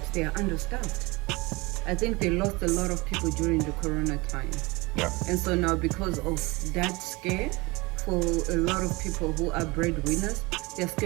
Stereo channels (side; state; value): left; quieter; 24.2 dB